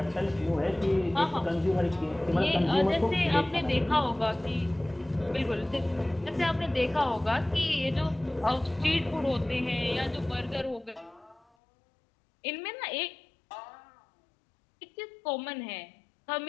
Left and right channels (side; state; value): right; drops out; at 11.4 s